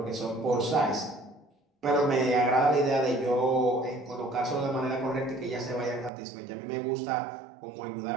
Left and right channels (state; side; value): drops out; left; at 6.1 s